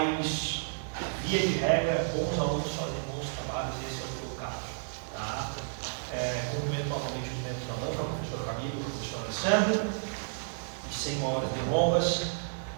via de regra, bons alunos fazem bons trabalhos, esse é o teu caso. Tá? Cumprimento novamente os membros da ANFA, o professor Camilo, o professor Alessandro, e sem maiores delongas,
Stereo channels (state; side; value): silent; left; digital silence